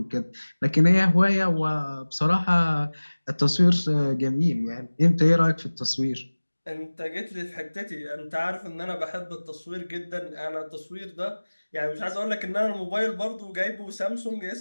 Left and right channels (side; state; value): both; inverted; correlation -1.00